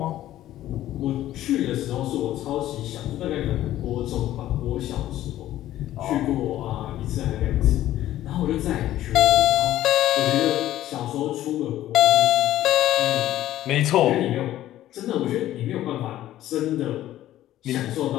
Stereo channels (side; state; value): right; quieter; 13.6 dB